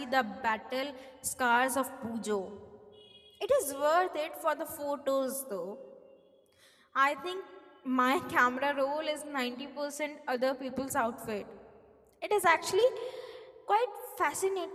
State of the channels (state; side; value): identical; both; correlation 1.00